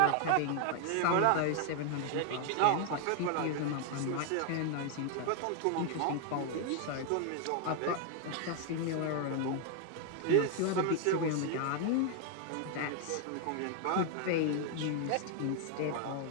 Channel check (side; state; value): both; different; correlation 0.00